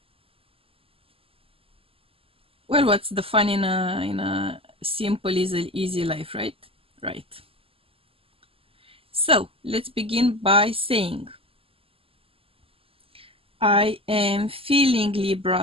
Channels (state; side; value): late; left; 0.27 ms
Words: Well, what's the fun in a simple, easy life, right? Right. So let's begin by saying, I am feeling